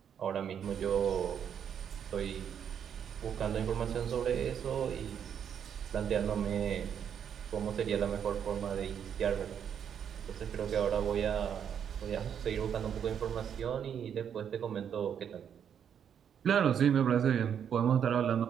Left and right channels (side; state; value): left; quieter; 8.3 dB